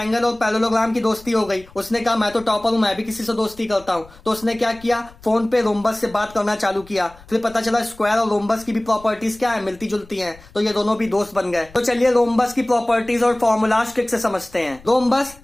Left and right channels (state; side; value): noise; left; rumble, 23 dB below the sound